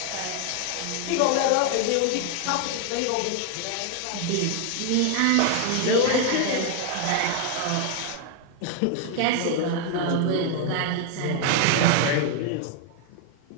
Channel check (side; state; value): both; different; correlation 0.00